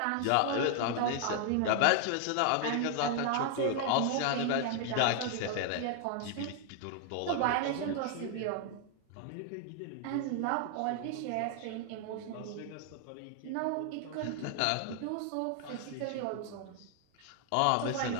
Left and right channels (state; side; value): different; both; correlation 0.00